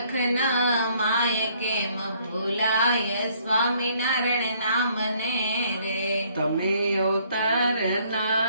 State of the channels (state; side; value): inverted; both; correlation -0.64